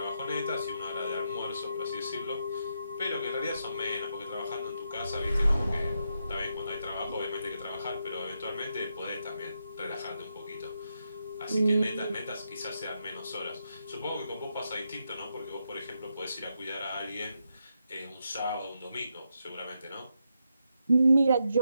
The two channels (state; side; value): inverted; both; correlation -0.83